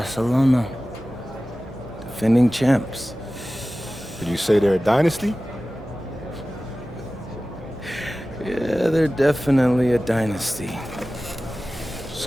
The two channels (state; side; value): normal; both; correlation 0.96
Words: Defending champs. Did you say they're a dynasty? Yeah, they're definitely a dynasty.